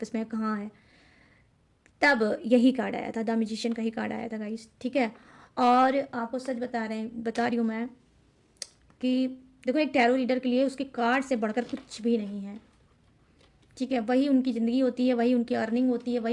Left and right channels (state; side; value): identical; both; correlation 1.00